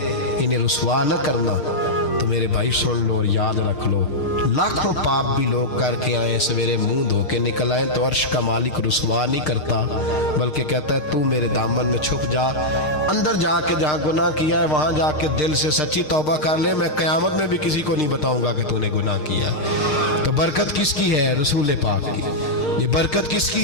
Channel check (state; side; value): late; right; 6.6 ms